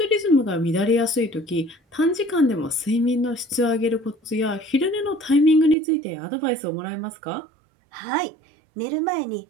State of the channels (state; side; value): drops out; left; at 5.8 s